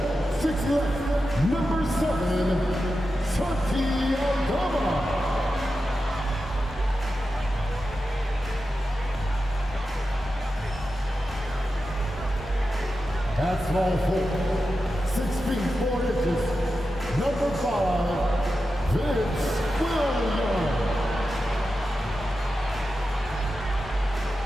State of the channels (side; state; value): both; normal; correlation 0.91